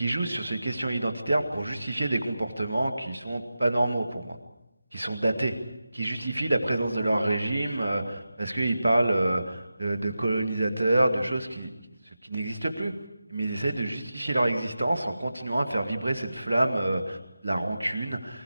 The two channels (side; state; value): both; inverted; correlation -0.92